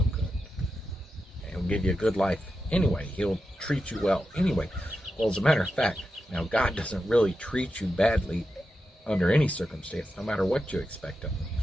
good. And He'll give you a good life anyway. He'll treat you well anyway. Well, as a matter of fact, now God doesn't really treat you badly under any circumstance, no matter what you expect of Him.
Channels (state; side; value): normal; both; correlation 0.89